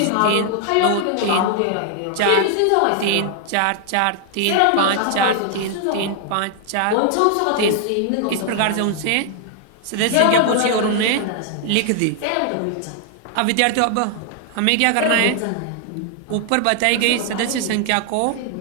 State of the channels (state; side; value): different; both; correlation 0.00